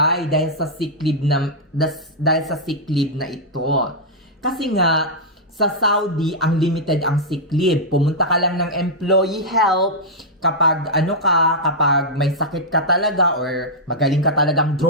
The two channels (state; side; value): normal; both; correlation -0.08